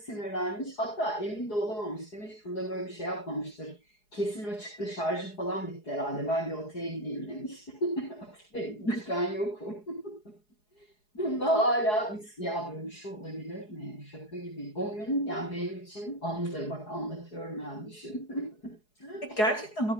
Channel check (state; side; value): late; right; 4.8 ms